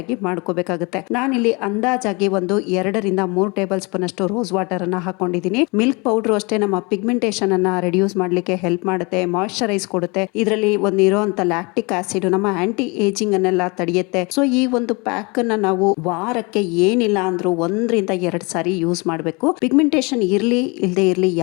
ಮಾಡ್ಕೋಬೇಕಾಗುತ್ತೆ. ನಾನಿಲ್ಲಿ ಅಂದಾಜಾಗಿ ಒಂದು 2 ರಿಂದ 3 ಟೇಬಲ್ ಸ್ಪೂನ್ ಅಷ್ಟು ರೋಸ್ ವಾಟರ್ ಅನ್ನ ಹಾಕೊಂಡಿದ್ದೀನಿ. ಮಿಲ್ಕ್ ಪೌಡರ್ ಅಷ್ಟೇ ನಮ್ಮ ಪಿಗ್ಮೆಂಟೇಷನ್ ಅನ್ನ ರಿಡ್ಯೂಸ್ ಮಾಡ್ಲಿಕ್ಕೆ ಹೆಲ್ಪ್ ಮಾಡುತ್ತೆ, ಮಾಯಿಶ್ಚರೈಸ್ ಕೊಡುತ್ತೆ. ಇದರಲ್ಲಿ ಒಂದು ಇರುವಂತ ಲ್ಯಾಕ್ಟಿಕ್ ಆಸಿಡ್ ನಮ್ಮ ಆಂಟಿ ಏಜಿಂಗ್ ಅನ್ನೆಲ್ಲ ತಡೆಯುತ್ತೆ. ಸೊ ಈ ಒಂದು ಪ್ಯಾಕ್ ಅನ್ನ ನಾವು ವಾರಕ್ಕೆ ಏನಿಲ್ಲ ಅಂದ್ರೂ 1 ರಿಂದ 2 ಸಾರಿ ಯೂಸ್ ಮಾಡಬೇಕು. ಪಿಗ್ಮೆಂಟೇಷನ್ ಇರ್ಲಿ ಇಲ್ಲದೆ ಇರ್ಲಿ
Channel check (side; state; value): right; quieter; 28.5 dB